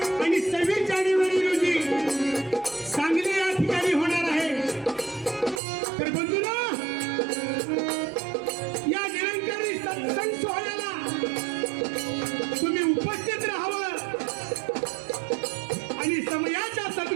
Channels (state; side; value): drops out; left; at 5.6 s